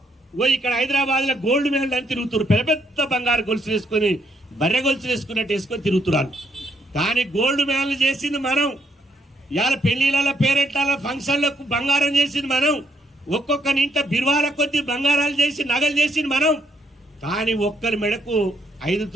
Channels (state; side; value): normal; both; correlation 0.73